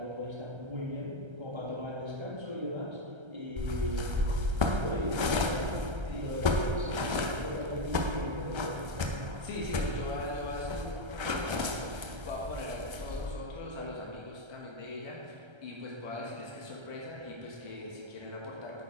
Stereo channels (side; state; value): left; late; 1.3 ms